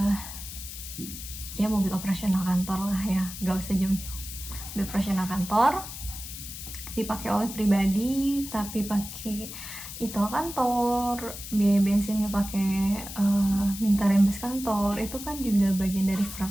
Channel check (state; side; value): noise; left; hiss, 10 dB below the sound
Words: ya mobil operasional kantor lah ya, gak usah jauh-jauh. Mobil operasional kantor dipakai oleh pribadi tapi pakai e-tol kantor, biaya bensinnya pakai minta rembes kantor, itu kan juga bagian dari fraud.